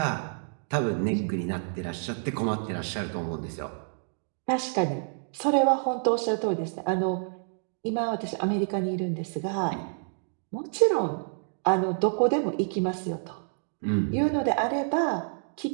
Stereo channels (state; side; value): silent; left; digital silence